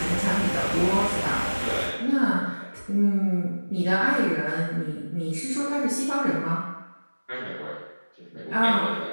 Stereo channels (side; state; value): both; inverted; correlation -1.00